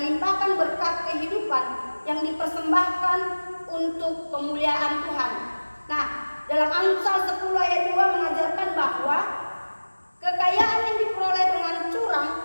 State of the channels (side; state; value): both; inverted; correlation -1.00